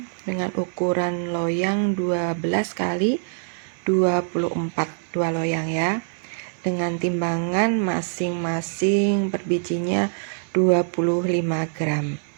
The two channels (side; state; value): left; silent; 63 dB below the other